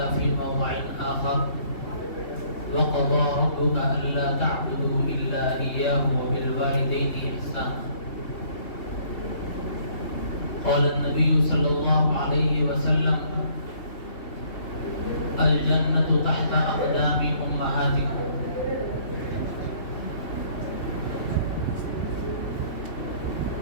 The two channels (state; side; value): late; right; 3.2 ms